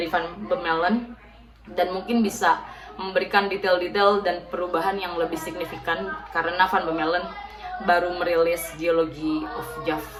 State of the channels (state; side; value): identical; both; correlation 1.00